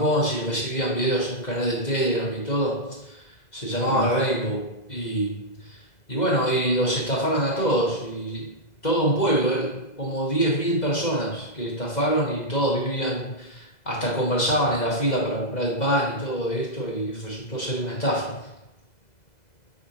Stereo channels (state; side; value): late; right; 2.0 ms